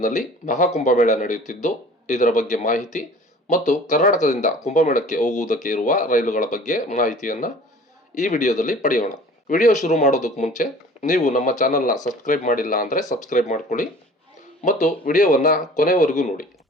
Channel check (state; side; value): normal; both; correlation 0.46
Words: ಮಹಾಕುಂಭಮೇಳ ನಡೆಯುತ್ತಿದ್ದು, ಇದರ ಬಗ್ಗೆ ಮಾಹಿತಿ ಮತ್ತು ಕರ್ನಾಟಕದಿಂದ ಕುಂಭಮೇಳಕ್ಕೆ ಹೋಗುವುದಕ್ಕೆ ಇರುವ ರೈಲುಗಳ ಬಗ್ಗೆ ಮಾಹಿತಿಯನ್ನ ಈ ವಿಡಿಯೋದಲ್ಲಿ ಪಡೆಯೋಣ. ವಿಡಿಯೋ ಶುರು ಮಾಡೋದಕ್ಕೆ ಮುಂಚೆ ನೀವು ನಮ್ಮ ಚಾನಲ್ನ ಸಬ್ಸ್ಕ್ರೈಬ್ ಮಾಡಿಲ್ಲ ಅಂದರೆ ಸಬ್ಸ್ಕ್ರೈಬ್ ಮಾಡ್ಕೊಳ್ಳಿ ಮತ್ತು ವಿಡಿಯೋವನ್ನ ಕೊನೆವರೆಗೂ ನೋಡಿ.